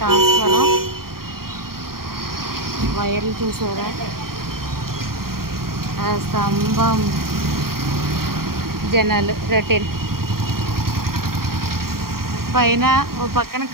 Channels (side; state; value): left; late; 0.93 ms